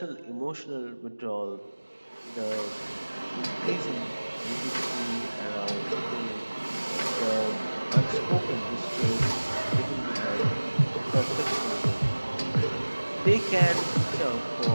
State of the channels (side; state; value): both; inverted; correlation -1.00